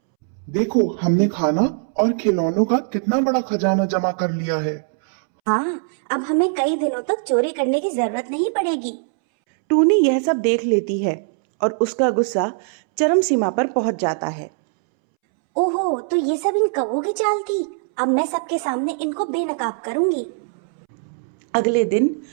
देखो, हमने खाना और खिलौनों का कितना बड़ा खजाना जमा कर लिया है। हाँ, अब हमें कई दिनों तक चोरी करने की जरूरत नहीं पड़ेगी। टूनी यह सब देख लेती है और उसका गुस्सा चरम सीमा पर पहुंच जाता है। ओहो, तो ये सब इन कौवों की चाल थी। अब मैं सबके सामने इनको बेनकाब करूंगी। अगले दिन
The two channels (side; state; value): left; silent; 65 dB below the other